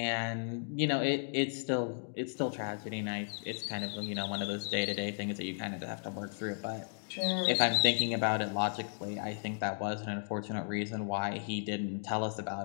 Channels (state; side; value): silent; right; digital silence